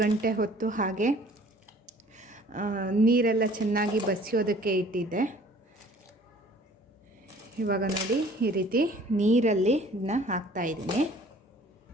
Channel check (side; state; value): both; normal; correlation 0.53